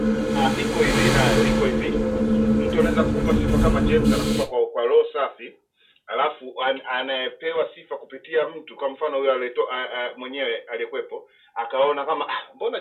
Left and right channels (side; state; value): both; identical; correlation 1.00